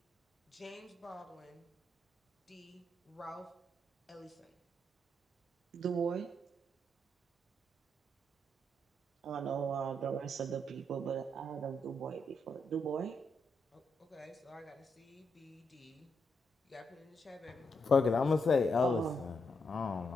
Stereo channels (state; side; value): normal; both; correlation 0.80